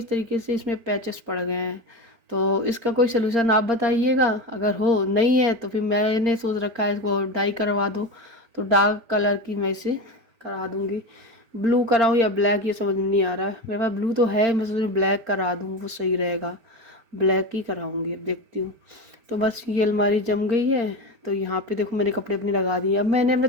तरीके से इसमें पैचेस पड़ गए हैं। तो इसका कोई सलूशन आप बताइएगा, अगर हो नहीं है तो फिर मैंने सोच रखा है इसको डाई करवा दो। तो डार्क कलर की मैं इसे करा दूंगी। ब्लू कराऊँ या ब्लैक, ये समझ में नहीं आ रहा है। मेरे पास ब्लू तो है, मैं सोच रही ब्लैक करा दूँ, वो सही रहेगा। ब्लैक ही कराऊंगी, अब देखती हूँ। तो बस ये अलमारी जम गई है। तो यहाँ पे देखो मैंने कपड़े अपने लगा दिए। अब मैंने अपने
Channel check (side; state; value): left; late; 4.3 ms